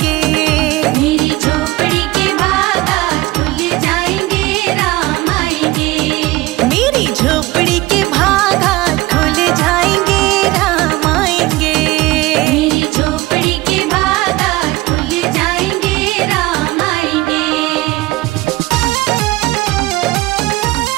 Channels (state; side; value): quieter; left; 19.5 dB